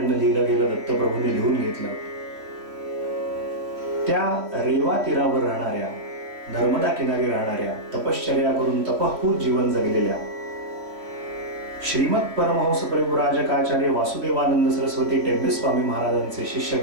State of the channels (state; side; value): late; left; 3.0 ms